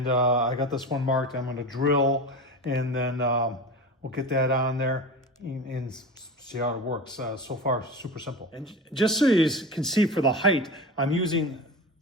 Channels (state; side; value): normal; both; correlation 0.29